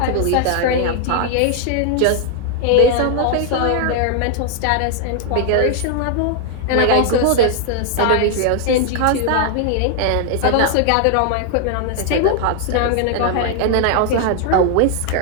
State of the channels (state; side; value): different; both; correlation 0.00